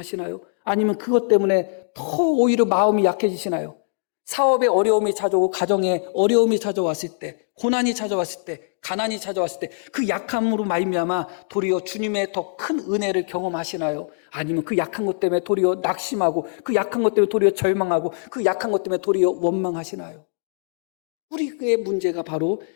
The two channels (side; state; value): right; silent; digital silence